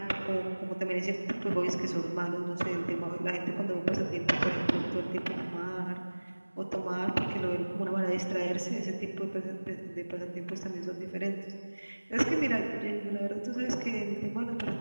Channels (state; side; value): inverted; both; correlation -1.00